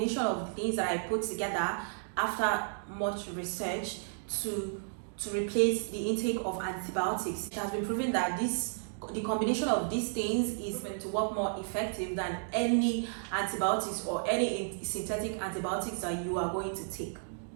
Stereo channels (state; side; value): silent; left; digital silence